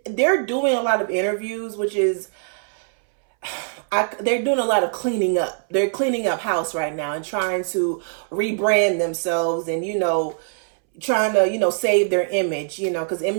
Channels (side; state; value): left; silent; 64 dB below the other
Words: they're doing a lot of interviews, which is, they're doing a lot of cleaning up. They're cleaning up house right now and trying to rebrand themselves and, you know, trying to, you know, save their image, you know, because